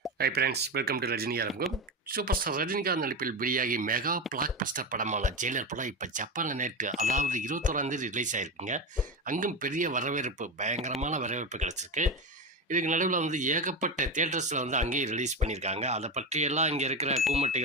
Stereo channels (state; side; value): normal; both; correlation 0.18